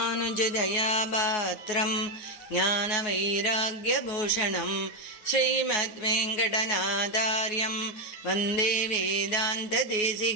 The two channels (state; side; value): late; right; 9.4 ms